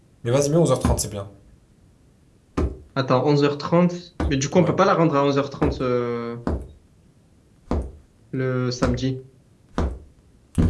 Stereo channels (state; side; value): identical; both; correlation 1.00